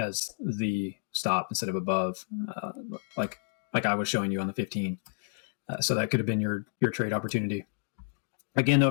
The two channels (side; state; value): right; silent; digital silence